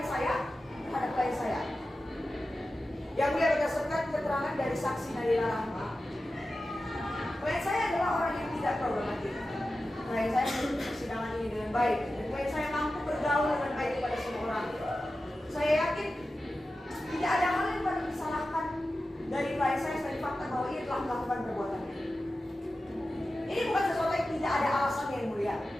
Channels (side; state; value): both; normal; correlation 0.93